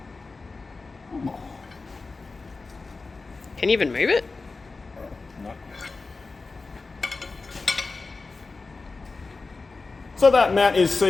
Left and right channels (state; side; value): quieter; right; 3.9 dB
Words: Can you even move it? No. So that mount is